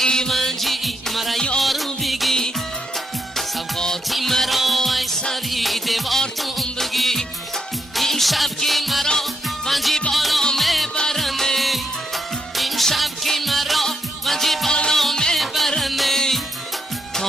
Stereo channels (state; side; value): normal; both; correlation 0.78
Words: من جی مرا یارو بگی سوقاتی مرا سری دیوارتون بگی این شب که مرا منجی بالا میبرنه این شب که مرا منجی بالا میبرنه